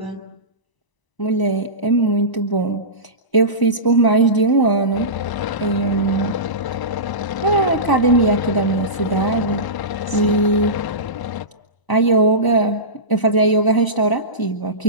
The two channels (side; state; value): right; late; 1.0 ms